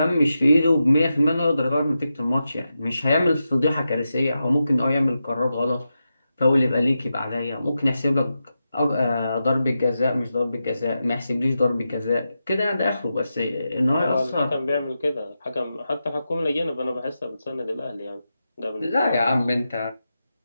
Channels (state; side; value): inverted; both; correlation -0.89